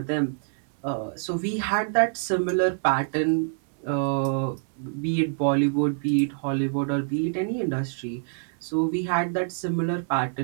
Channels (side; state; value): left; silent; 58 dB below the other